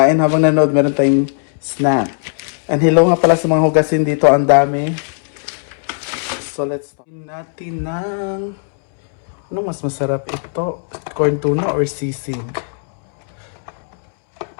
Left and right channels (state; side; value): silent; right; 68 dB below the other